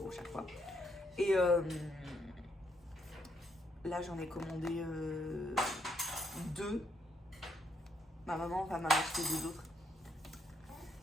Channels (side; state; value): both; normal; correlation 0.75